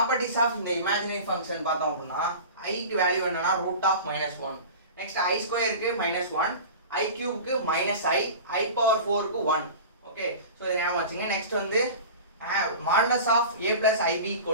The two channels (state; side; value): inverted; both; correlation -0.35